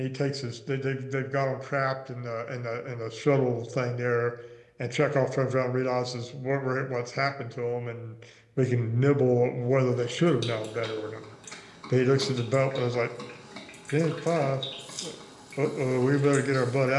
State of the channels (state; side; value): identical; both; correlation 1.00